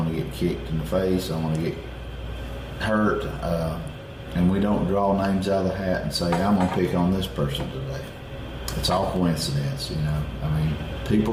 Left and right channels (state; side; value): identical; both; correlation 1.00